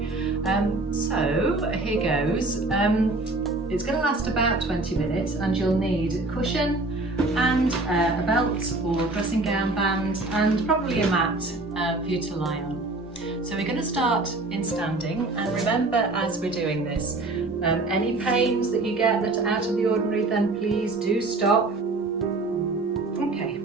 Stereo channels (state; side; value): quieter; left; 3.1 dB